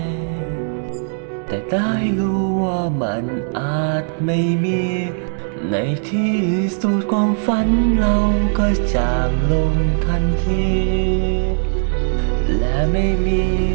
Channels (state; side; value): silent; left; digital silence